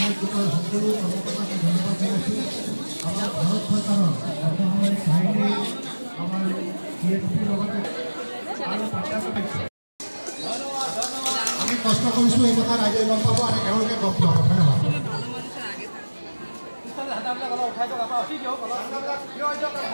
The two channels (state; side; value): inverted; both; correlation -1.00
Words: কৰা সকলো কৰ্মকৰ্তাক ধন্যবাদ জনাইছোঁ আমাৰ ভাৰত চৰকাৰৰ অসামৰিক বাহিনী আমাৰ CSPৰ লগতে আৰু আমি কষ্ট কৰিছোঁ এই কথা ৰাইজে গম পাব আৰু তেওঁলোকে গম পাব ধন্যবাদ